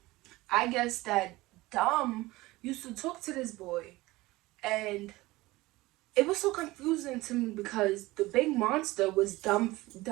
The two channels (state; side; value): quieter; left; 19.7 dB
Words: I guess that Dom used to talk to this boy, and it was so confusing to me because the big monster was Dumb